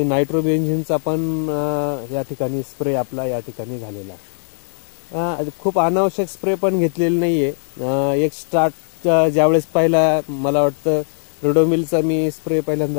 नायट्रोबेन्झिनचा पण या ठिकाणी स्प्रे आपला या ठिकाणी झालेला आहे. खूप अनावश्यक स्प्रे पण घेतलेले नाहीये. एक स्टार्ट ज्यावेळेस पहिला मला वाटतं रोडोमिलचा मी स्प्रे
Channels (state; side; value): silent; right; digital silence